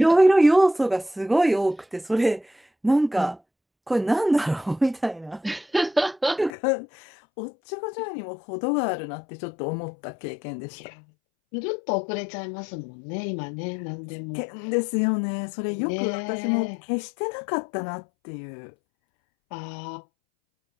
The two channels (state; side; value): drops out; right; at 6.5 s